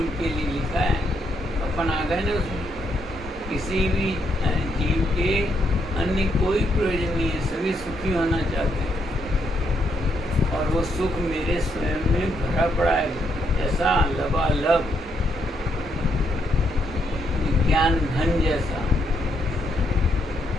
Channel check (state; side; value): normal; both; correlation 0.76